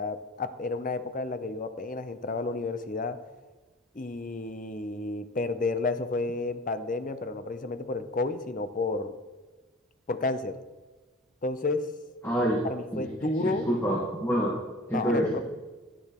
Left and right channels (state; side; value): normal; both; correlation 0.42